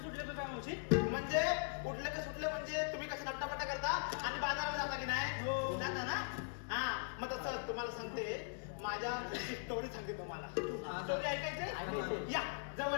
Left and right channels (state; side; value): silent; right; digital silence